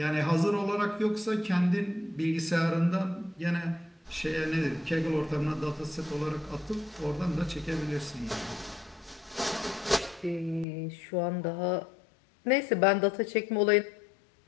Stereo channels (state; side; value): drops out; right; at 10.7 s